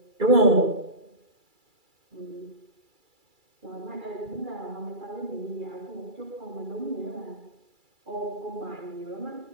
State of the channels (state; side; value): late; left; 2.3 ms